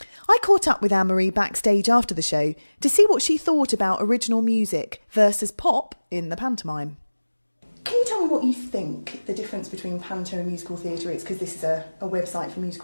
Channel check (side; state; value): both; inverted; correlation -1.00